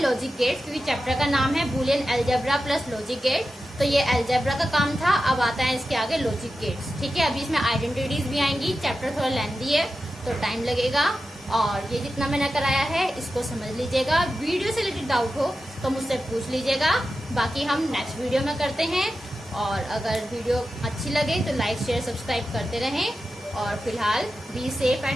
लॉजिक गेट्स, क्योंकि चैप्टर का नाम है boolean algebra plus logic gate. तो ये अलजेब्रा का काम था, अब आता है इसके आगे लॉजिक गेट्स। ठीक है, अभी इसमें आइडेंटिटीज भी आएंगी। चैप्टर थोड़ा लेंथी है तो टाइम लगेगा, और ये जितना मैंने कराया है इसको समझ लीजिएगा। वीडियो से रिलेटेड डाउट हो तो मुझसे पूछ लीजिएगा, बाकी हम नेक्स्ट वीडियो में करते हैं। और अगर वीडियो अच्छी लगे तो लाइक शेयर सब्सक्राइब करते रहें, और फिलहाल be safe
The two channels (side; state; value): both; normal; correlation 0.92